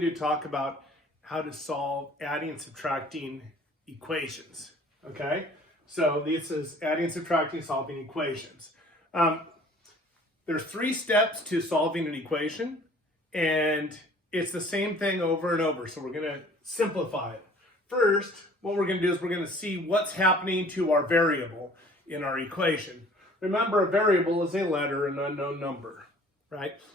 talk about how to solve adding and subtracting equations, okay? So this is adding and subtracting, solving equations. There's 3 steps to solving an equation, and it's the same thing over and over, so we're gonna simplify it. First, what we're gonna do is we're gonna see what's happening to our variable in our equation. Remember, a variable is a letter, an unknown number, right?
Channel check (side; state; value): both; normal; correlation 0.52